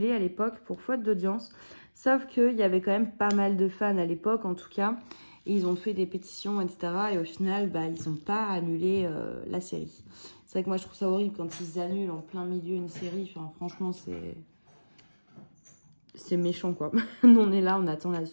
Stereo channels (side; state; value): both; inverted; correlation -1.00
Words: à l'époque pour faute d'audience. Sauf qu'il y avait quand même pas mal de fans à l'époque, en tout cas. Et ils ont fait des pétitions, etc. Et au final, ils n'ont pas annulé la série. C'est vrai que moi, je trouve ça horrible quand ils annulent en plein milieu une série. Enfin, franchement, c'est méchant, quoi. Nous, on est là, on attend la